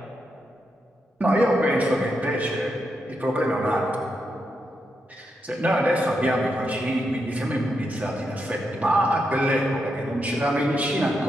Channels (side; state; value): both; normal; correlation 0.83